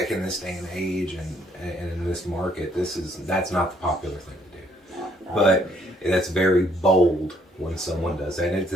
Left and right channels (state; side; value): normal; both; correlation 0.67